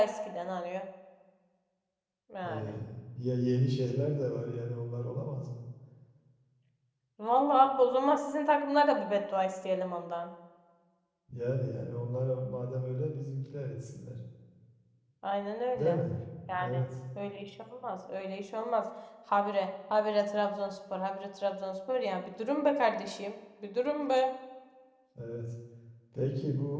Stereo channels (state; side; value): identical; both; correlation 1.00